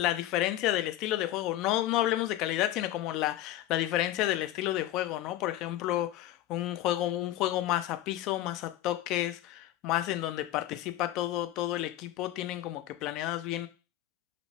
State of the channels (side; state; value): right; quieter; 13.6 dB